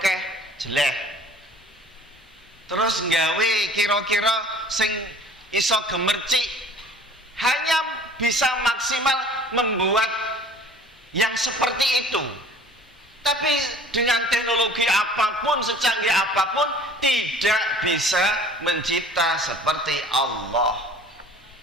jelek. Terus nggawe kira-kira sing iso gemercik hanya bisa maksimal membuat yang seperti itu. Tapi dengan teknologi apapun, secanggih apapun, tidak bisa mencipta seperti Allah.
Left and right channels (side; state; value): both; normal; correlation 0.49